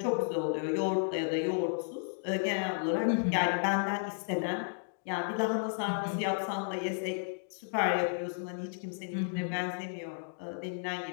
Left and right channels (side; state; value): right; silent; digital silence